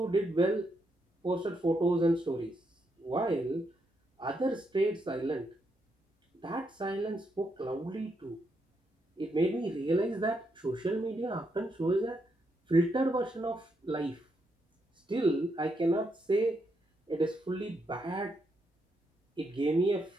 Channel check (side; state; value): both; normal; correlation 0.79